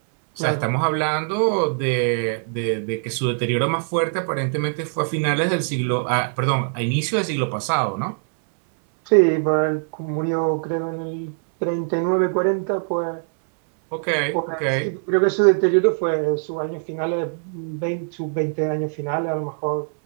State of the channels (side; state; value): left; silent; 64 dB below the other